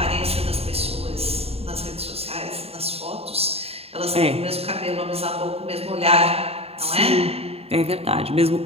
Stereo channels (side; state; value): left; late; 0.29 ms